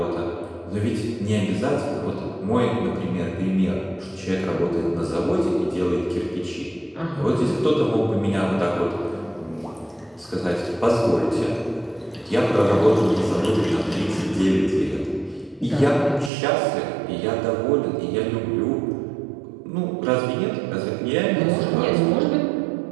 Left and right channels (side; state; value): left; drops out; at 16.3 s